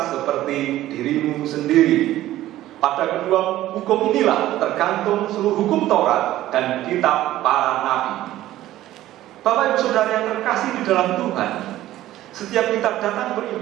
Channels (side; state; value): left; quieter; 14.5 dB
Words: seperti dirimu sendiri. Pada kedua hukum inilah tergantung seluruh hukum Taurat dan kitab para nabi. Bapak Ibu Saudara yang terkasih di dalam Tuhan, setiap kita datang